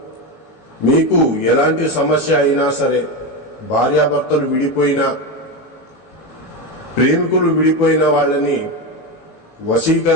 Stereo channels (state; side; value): late; right; 18 ms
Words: మీకు ఎలాంటి సమస్య అయినా సరే, భార్యాభర్తలు విడిపోయినా, ప్రేమికులు విడిపోయిన వాళ్ళని